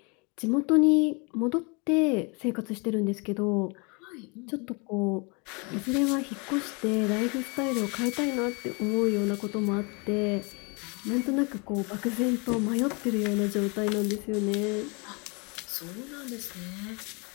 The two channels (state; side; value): quieter; right; 31.2 dB